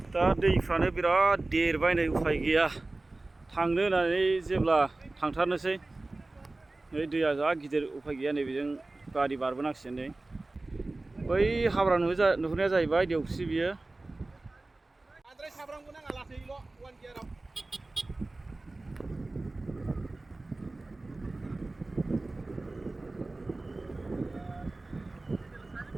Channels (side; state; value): left; quieter; 3.0 dB